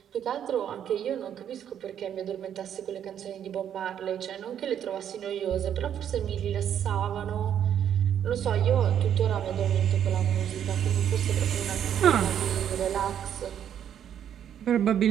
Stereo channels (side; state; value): left; quieter; 9.5 dB